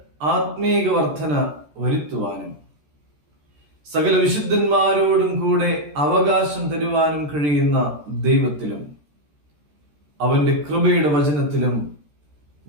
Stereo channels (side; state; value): left; late; 14 ms